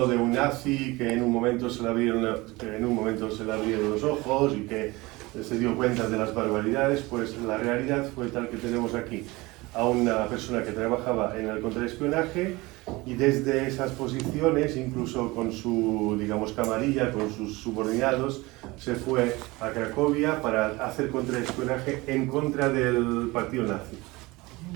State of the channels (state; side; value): quieter; left; 22.2 dB